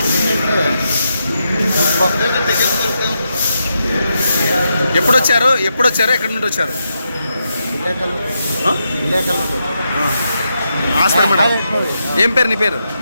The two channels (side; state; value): both; inverted; correlation -0.84